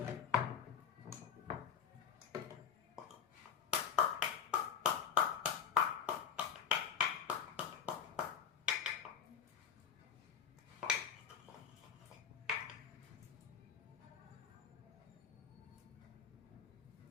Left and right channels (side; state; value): right; quieter; 7.8 dB